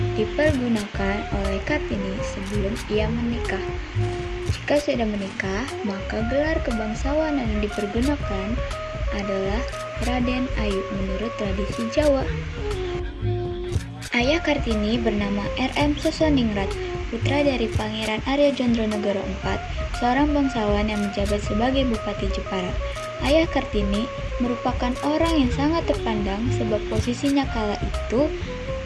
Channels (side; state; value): both; identical; correlation 1.00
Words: dipergunakan oleh Kartini sebelum ia menikah. Jika sudah menikah, maka gelar kebangsawanan yang dipergunakan adalah Raden Ayu menurut tradisi Jawa. Ayah Kartini bernama R.M. Sosoningrat, putra dari Pangeran Arya Jondronegoro IV, seorang bangsawan yang menjabat sebagai Bupati Jepara. Ayah Kartini merupakan orang yang sangat terpandang sebab posisinya kala itu